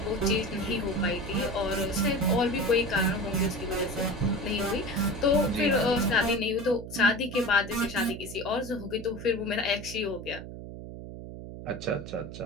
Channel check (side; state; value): right; noise; hum, 11 dB below the sound